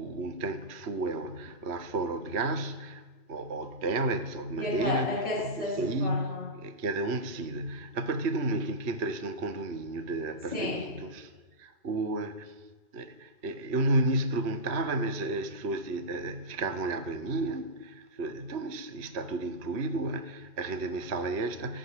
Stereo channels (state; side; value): late; left; 3.0 ms